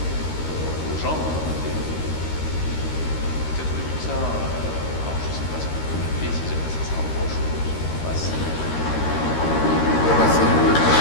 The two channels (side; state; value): right; late; 13 ms